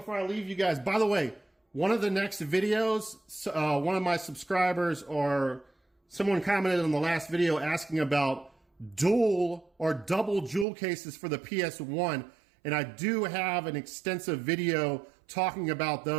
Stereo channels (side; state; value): left; drops out; at 10.7 s